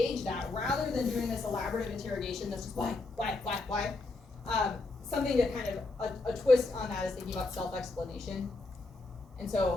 that rather than doing this elaborative interrogation that's just why? Something that kind of a twist on that is thinking about self-explanation. And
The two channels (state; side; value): quieter; right; 3.3 dB